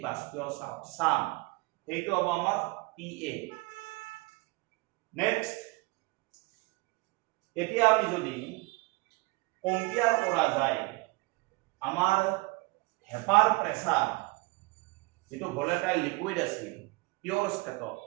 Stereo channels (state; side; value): quieter; left; 24.1 dB